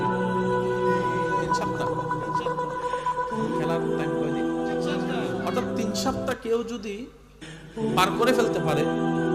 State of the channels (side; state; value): both; identical; correlation 1.00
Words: 3 সপ্তাহ। খেলার টাইম কয়দিন? অর্থাৎ 3 সপ্তাহ কেউ যদি পার করে ফেলতে পারে